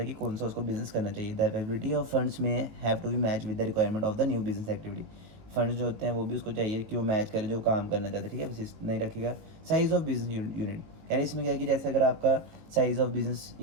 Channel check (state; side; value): late; left; 19 ms